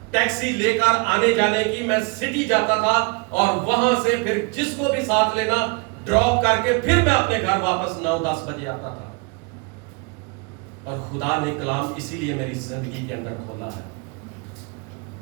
ٹیکسی لے کر آنے جانے کی میں سٹی جاتا تھا, اور وہاں سے پھر جس کو بھی ساتھ لینا ڈراپ کر کے پھر میں اپنے گھر واپس 9-10 بجے آتا تھا. اور خدا نے کلام اسی لیے میری زندگی کے اندر کھولا ہے,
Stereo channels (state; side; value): quieter; left; 31.2 dB